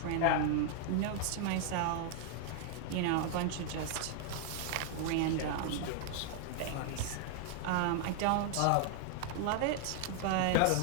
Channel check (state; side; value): different; both; correlation 0.00